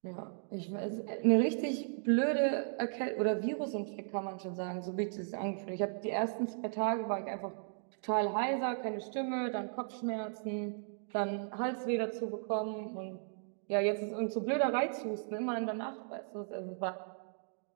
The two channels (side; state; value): left; silent; digital silence